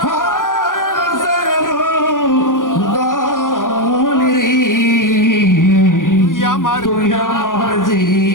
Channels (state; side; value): late; right; 0.89 ms